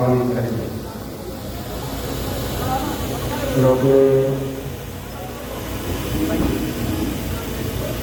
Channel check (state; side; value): identical; both; correlation 1.00